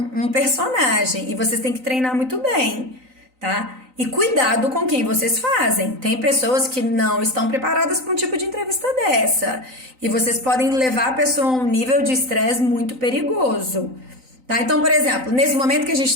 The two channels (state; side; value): late; left; 3.9 ms